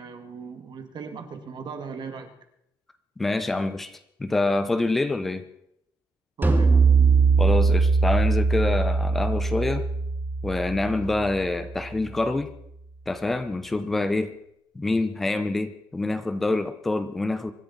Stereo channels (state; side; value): normal; both; correlation 0.84